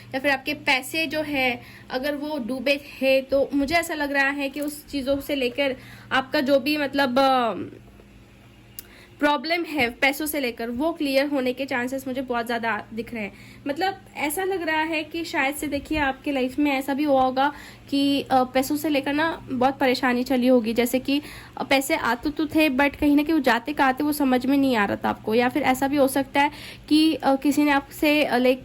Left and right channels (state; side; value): identical; both; correlation 1.00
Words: या फिर आपके पैसे जो है अगर वो डूबे थे, तो मुझे ऐसा लग रहा है कि उस चीज़ों से लेकर आपका जो भी मतलब प्रॉब्लम है पैसों से लेकर, वो क्लियर होने के चांसेस मुझे बहुत ज़्यादा दिख रहे हैं। मतलब ऐसा लग रहा है कि शायद से देखिए आपके लाइफ में ऐसा भी हुआ होगा कि पैसों से लेकर ना बहुत परेशानी चली होगी, जैसे कि पैसे आते तो थे बट कहीं ना कहीं वो जाते कहाँ थे वो समझ में नहीं आ रहा था आपको। या फिर ऐसा भी हो सकता है कि किसी ने आपसे